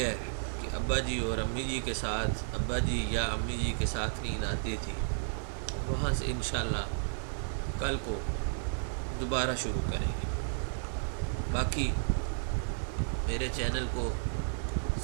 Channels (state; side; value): silent; left; digital silence